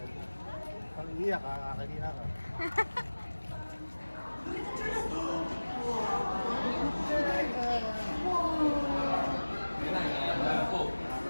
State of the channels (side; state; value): both; inverted; correlation -1.00